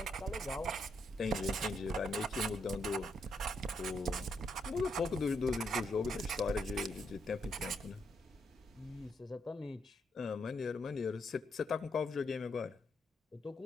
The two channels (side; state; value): both; normal; correlation 0.78